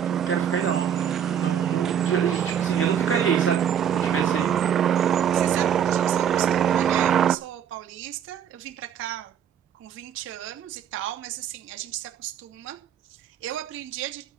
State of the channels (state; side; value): quieter; left; 8.9 dB